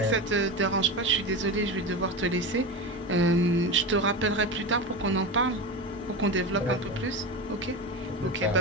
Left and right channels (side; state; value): both; normal; correlation 0.23